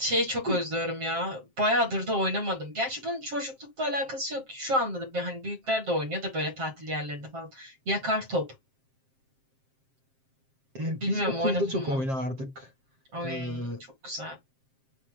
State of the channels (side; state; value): left; late; 7.6 ms